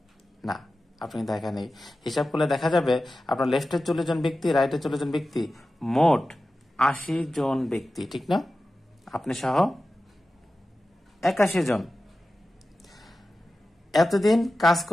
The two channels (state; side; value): normal; both; correlation 0.94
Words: না, আপনি একা নেই। হিসাব করলে দেখা যাবে আপনার লেফটে 40 জন ব্যক্তি, রাইটে 40 জন ব্যক্তি, মোট 80 জন ব্যক্তি, ঠিক না? আপনি সহ 81 জন। এতদিন কাজ